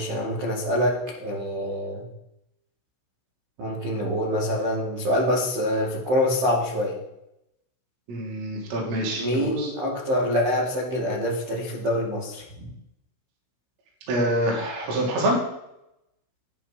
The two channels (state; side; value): late; left; 15 ms